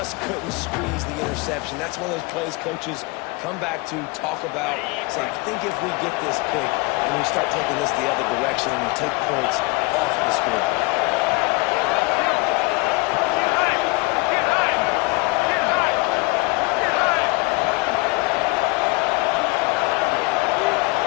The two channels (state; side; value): quieter; right; 25.8 dB